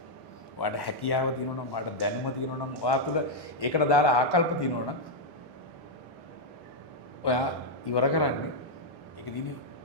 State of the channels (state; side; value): normal; both; correlation -0.02